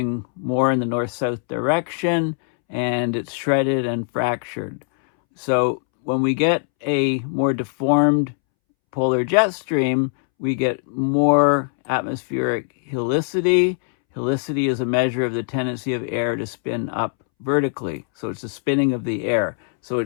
more in the north-south direction, and it's shredded and fractured. So when we get a more deformed polar jet stream, we get more atmospheric helicity. Helicity is a measure of the tendency of air to spin up vertically. So it's the spinning of the air. So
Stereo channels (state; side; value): silent; right; 65 dB below the other